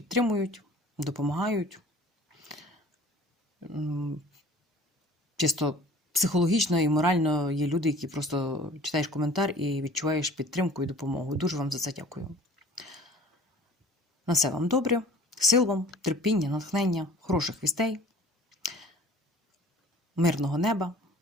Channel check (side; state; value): both; normal; correlation 0.47